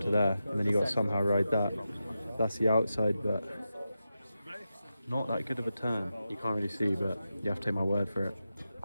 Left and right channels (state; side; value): inverted; both; correlation -0.90